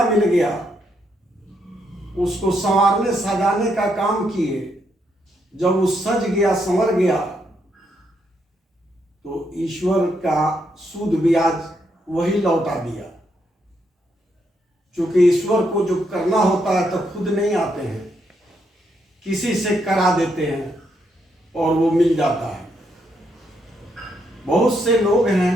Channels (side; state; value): both; normal; correlation 0.77